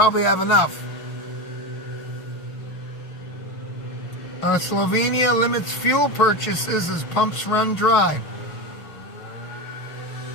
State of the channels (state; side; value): late; right; 6.0 ms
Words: have enough. Slovenia limits fuel purchases as pumps run dry.